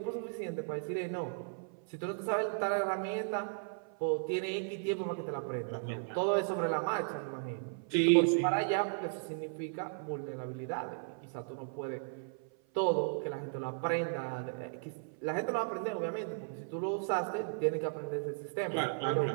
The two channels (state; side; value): silent; left; 54 dB below the other